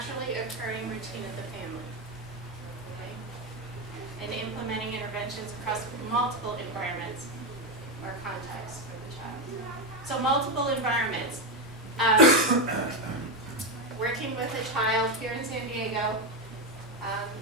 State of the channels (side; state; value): both; normal; correlation 0.10